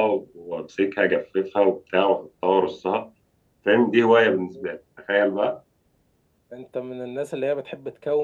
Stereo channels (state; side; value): identical; both; correlation 1.00